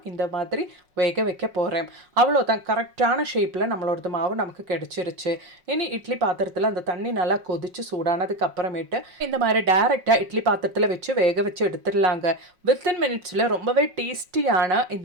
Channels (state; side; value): late; left; 5.5 ms